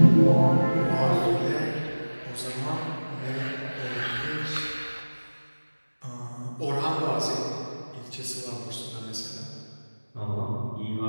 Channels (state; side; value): inverted; both; correlation -1.00